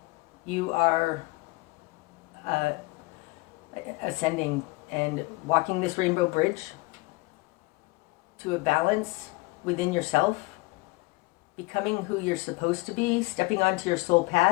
You are ascending and walking this Rainbow Bridge to a balance within yourself, becoming who you're supposed to be, stepping onto your soul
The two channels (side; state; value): right; quieter; 23.3 dB